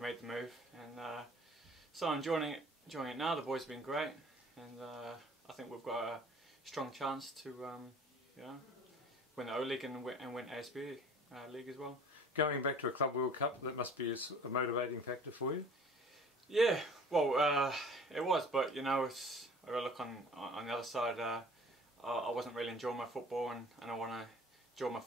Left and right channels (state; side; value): normal; both; correlation 0.48